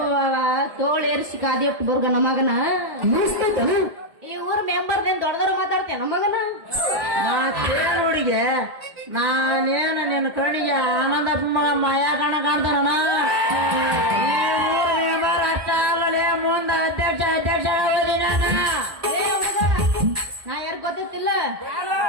ತೋಳೇರಿಸಿ ಕಾದಿಟ್ಟು ಬರ್ಗ ನಮಗನ ಮುಗಿಸ್ತೈತನ ಈ ಊರ್ ಮೆಂಬರ್ದೇನ್ ದೊಡ್ಡದವ್ರು ಮಾತಾಡ್ತೇನೆ ನಮಗನ ನಾ ಕೇಳುಡಿಗೆ ನಾನೇನ ನಿನ್ನ ಕಣ್ಣಿಗೆ ಆನಂದಪ್ಪ ಮಗ ಮಾಯಾ ಕಣ ಕಾಣ್ತಾನ ಈ ಊರ್ ಮೆಂಬರ್ ಅಷ್ಟ ಅಲ್ಲಲೇ ಮುಂದೆ ಅಧ್ಯಕ್ಷ ಆಗೋದಿ ನಾನು ಏ ಹುಡುಗ, ನಾ ಯಾರು ಗೊತ್ತಿಲ್ಲ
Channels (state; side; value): late; left; 1.8 ms